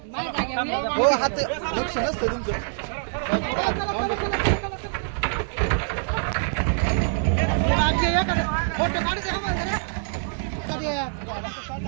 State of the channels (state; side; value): silent; left; digital silence